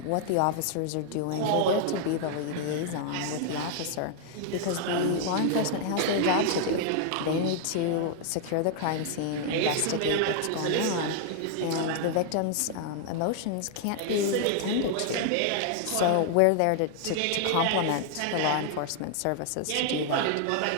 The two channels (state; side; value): different; both; correlation 0.00